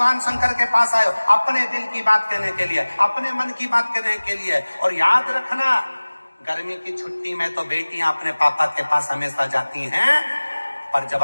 शंकर के पास आए हो, अपने दिल की बात कहने के लिए, अपने मन की बात कहने के लिए। और याद रखना, गर्मी की छुट्टी में तो बेटियां अपने पापा के पास हमेशा जाती हैं, पर जब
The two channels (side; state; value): both; inverted; correlation -1.00